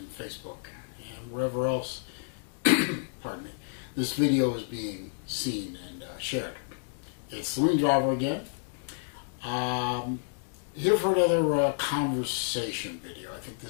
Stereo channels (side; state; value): right; silent; digital silence